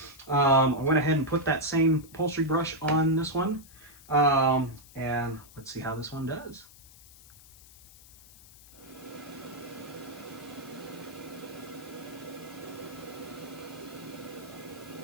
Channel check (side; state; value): left; noise; hiss, 22 dB below the sound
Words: I went ahead and put that same upholstery brush on this one. And let's see how this one does.